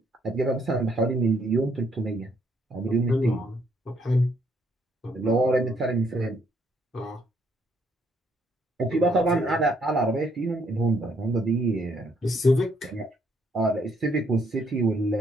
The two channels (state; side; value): normal; both; correlation 0.70